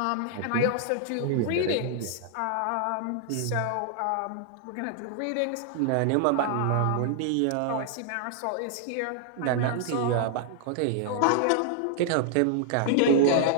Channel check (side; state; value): both; different; correlation -0.01